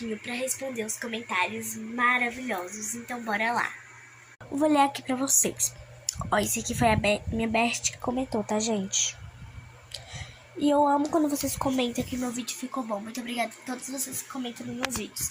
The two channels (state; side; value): identical; both; correlation 1.00